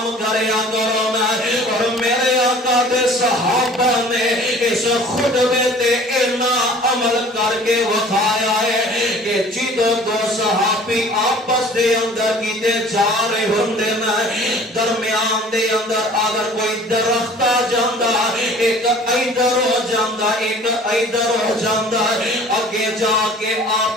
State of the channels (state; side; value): normal; both; correlation 0.48